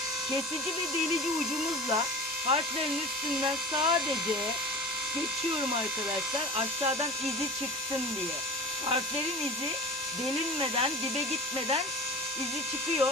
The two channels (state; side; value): normal; both; correlation 0.36